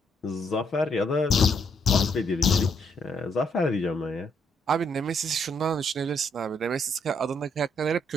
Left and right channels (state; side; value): normal; both; correlation 0.72